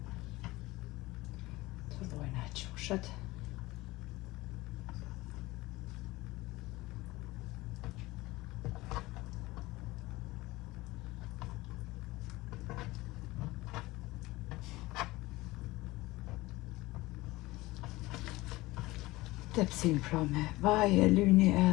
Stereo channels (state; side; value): quieter; right; 19.8 dB